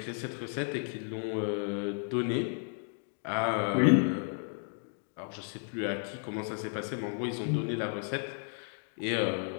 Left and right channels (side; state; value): right; silent; 56 dB below the other